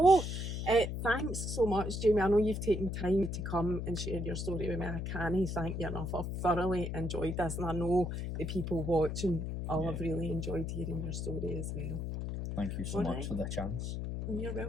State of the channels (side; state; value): left; noise; hum, 3 dB below the sound